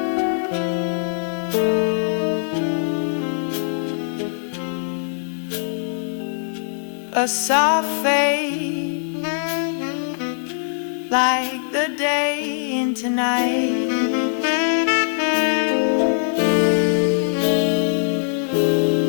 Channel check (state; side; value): silent; right; 57 dB below the other